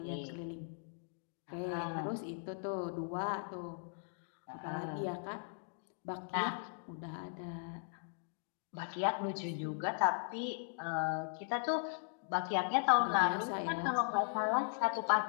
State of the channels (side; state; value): right; silent; digital silence